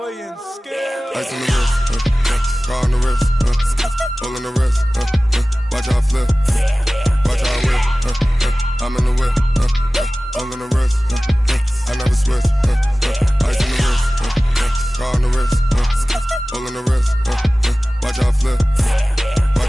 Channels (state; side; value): normal; both; correlation 0.97